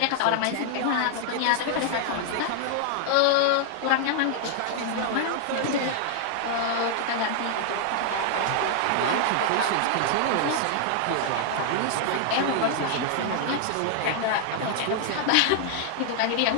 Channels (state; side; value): different; both; correlation 0.00